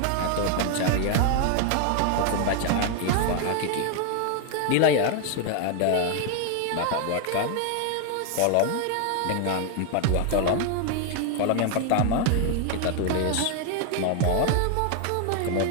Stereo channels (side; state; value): both; different; correlation 0.00